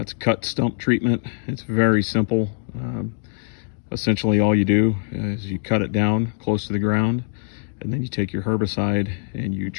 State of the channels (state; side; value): silent; right; 64 dB below the other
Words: cut stump treatment. It's very simple. Essentially all you do is you cut it down close to the ground, and then you take your herbicide and you